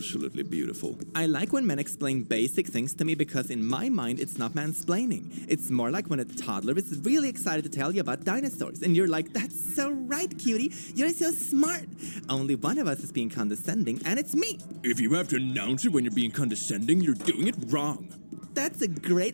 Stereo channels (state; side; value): inverted; both; correlation -1.00